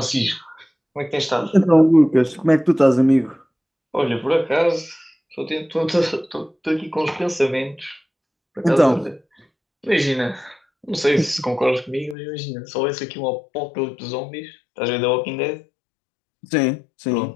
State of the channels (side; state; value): right; drops out; at 12.2 s